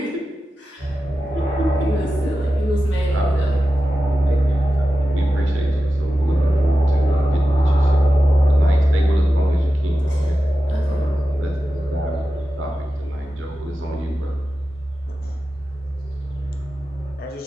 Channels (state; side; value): normal; both; correlation 0.92